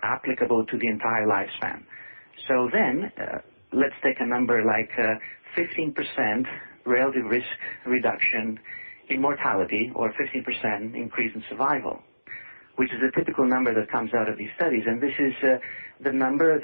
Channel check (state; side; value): inverted; both; correlation -1.00